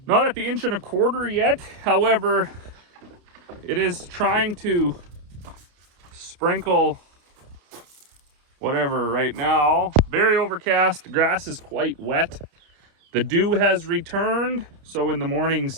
1.25 inch yet. However, it is trying to sprinkle whatever right now. Very overcast, the grass is quite wet. The dew has returned, so in the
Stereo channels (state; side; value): late; left; 30 ms